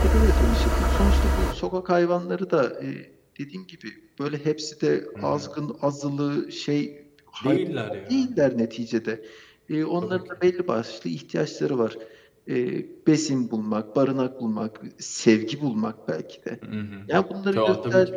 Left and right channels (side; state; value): both; identical; correlation 1.00